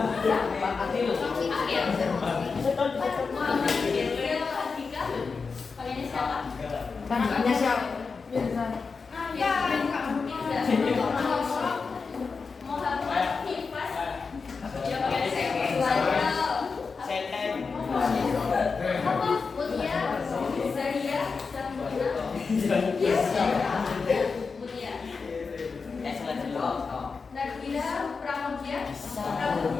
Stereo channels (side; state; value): right; quieter; 4.9 dB